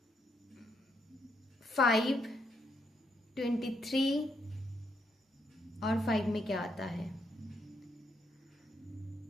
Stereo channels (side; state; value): both; normal; correlation 0.77